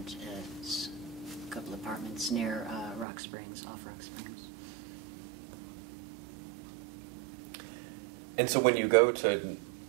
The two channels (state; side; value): drops out; left; at 3.1 s